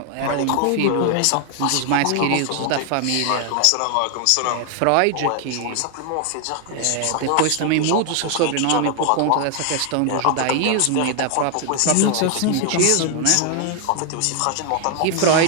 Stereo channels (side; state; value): both; different; correlation 0.00